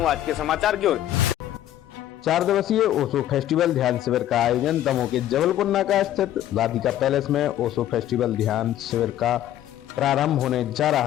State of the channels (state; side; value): quieter; right; 12.5 dB